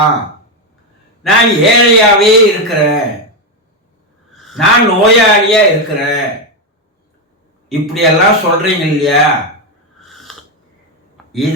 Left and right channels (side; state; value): both; normal; correlation 0.07